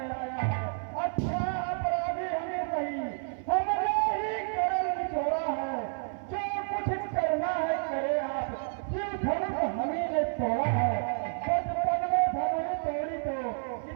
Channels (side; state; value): left; silent; 58 dB below the other